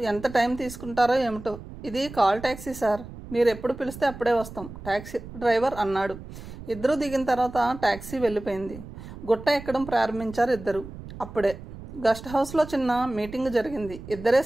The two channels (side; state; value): right; noise; rumble, 14 dB below the sound